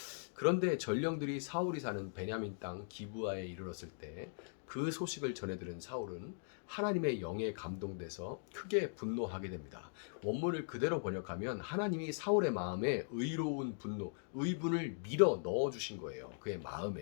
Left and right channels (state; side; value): silent; right; digital silence